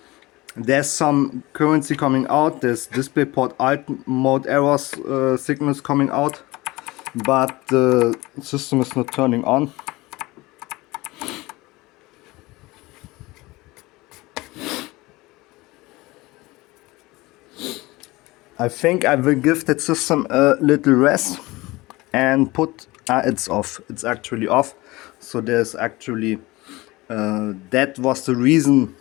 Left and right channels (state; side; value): quieter; right; 21.0 dB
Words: There's some currency coming out. There's DisplayPort alt mode errors signals coming out. But the system is not turning on. I think I will give that system a little rest and put... it's off. It's actually off. So there's actually... that was the reason,